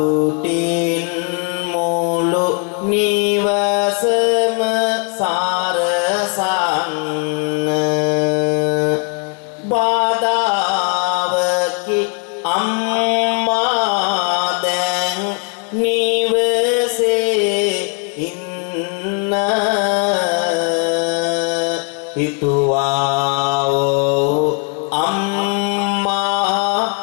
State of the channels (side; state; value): right; quieter; 39.4 dB